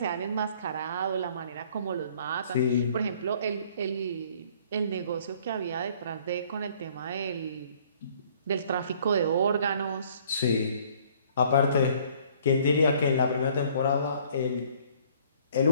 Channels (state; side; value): inverted; both; correlation -0.58